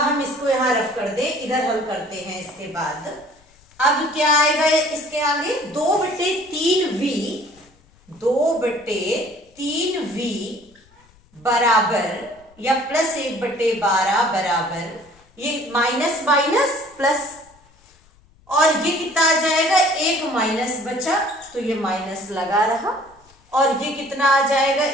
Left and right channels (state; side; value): noise; left; rumble, 30 dB below the sound